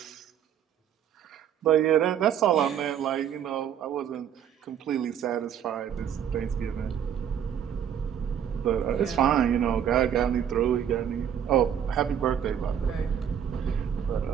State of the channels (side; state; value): left; quieter; 9.0 dB